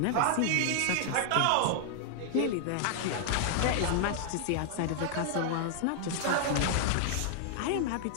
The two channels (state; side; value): different; both; correlation 0.00